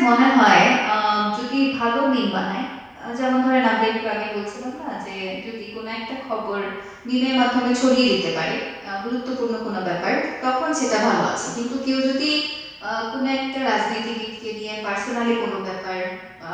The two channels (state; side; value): identical; both; correlation 1.00